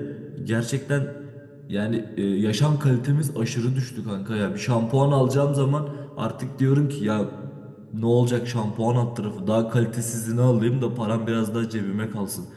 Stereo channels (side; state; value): both; identical; correlation 1.00